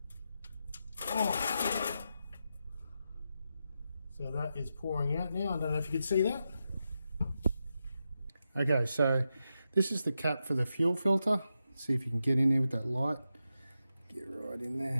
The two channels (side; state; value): both; inverted; correlation -0.88